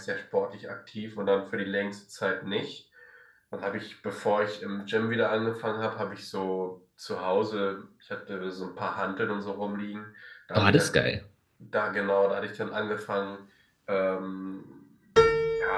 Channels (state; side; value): identical; both; correlation 1.00